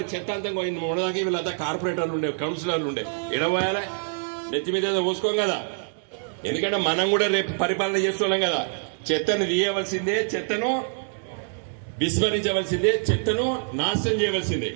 చెత్త అంతా మొన్నదాకా వీళ్ళంతా కార్పొరేటర్లు ఉండే, కౌన్సిలర్లు ఉండే, ఎడబోయాలి, నెత్తి మీద పోసుకోం కదా. ఎందుకంటే మనం కూడా రేపు పరిపాలన చేస్తున్నాం కదా. చెత్తను తీయవలసిందే, చెత్తను విస్మరించవలసిందే, చెత్తను నాశనం చేయవలసిందే.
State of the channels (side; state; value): left; silent; digital silence